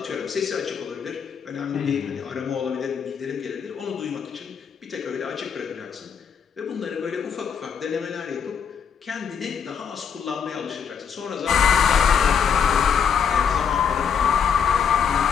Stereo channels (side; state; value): right; quieter; 7.3 dB